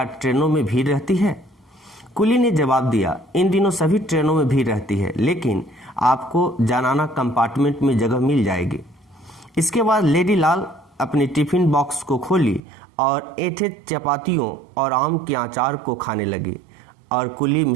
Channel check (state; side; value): drops out; left; at 12.6 s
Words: ट्रेनों में भीड़ रहती है? कुली ने जवाब दिया, इन दिनों सभी ट्रेनों में भीड़ रहती है, लेकिन आपको जनाना कंपार्टमेंट में जगह मिल जाएगी। इसके बाद लेडी लाल अपने टिफिन बॉक्स को खोली और ऐठे चपातियों और आम के अचार को खाने लगी और कुली